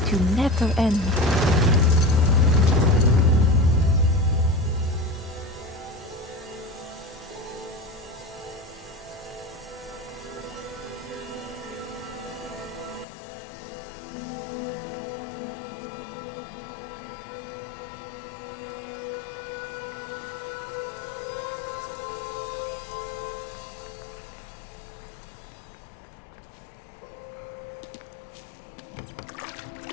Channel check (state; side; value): drops out; right; at 13.1 s